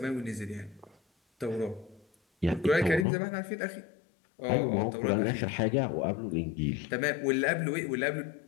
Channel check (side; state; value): right; drops out; at 3.1 s